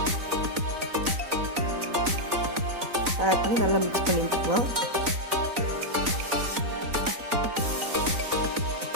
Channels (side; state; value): left; late; 4.0 ms